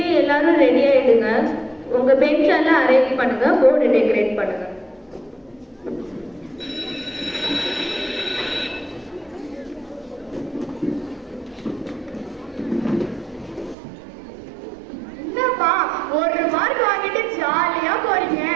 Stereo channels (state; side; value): drops out; left; at 13.8 s